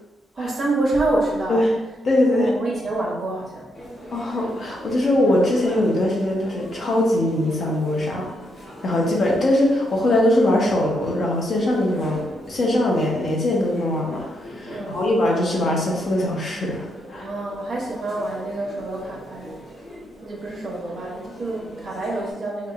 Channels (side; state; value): both; normal; correlation 0.79